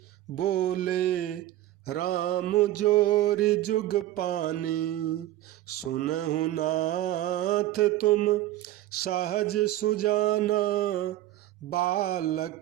बोले राम जोरि जुग पानी। सुनहु नाथ तुम सहज सुजाना,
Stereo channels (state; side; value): quieter; left; 14.4 dB